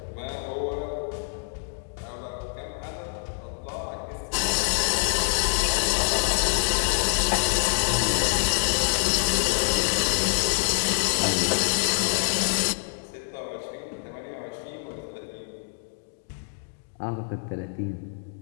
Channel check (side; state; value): right; silent; digital silence